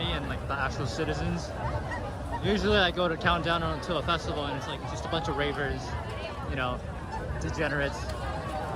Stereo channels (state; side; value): identical; both; correlation 1.00